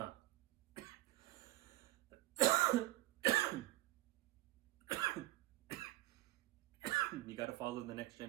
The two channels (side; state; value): left; quieter; 17.8 dB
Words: You gotta follow the next